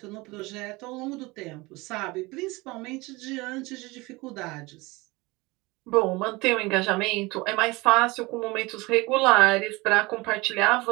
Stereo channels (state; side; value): quieter; left; 23.2 dB